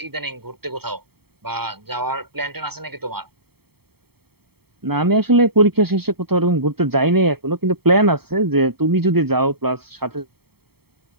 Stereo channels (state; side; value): late; left; 0.96 ms